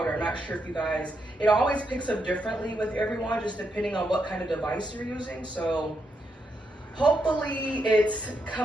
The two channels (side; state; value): both; normal; correlation 0.81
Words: I'm not sure if you guys, it always picks up differently with everyone, just depending on what kind of device you're using. So hopefully it's